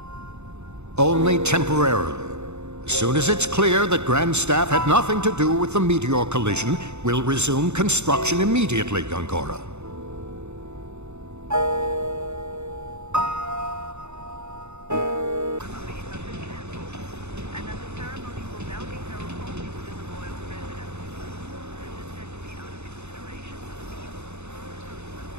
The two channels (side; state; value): left; late; 0.82 ms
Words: Only temporarily. As soon as it's clear that Grandstaff had nothing to do with the meteor collision, we'll resume construction immediately, Gongora.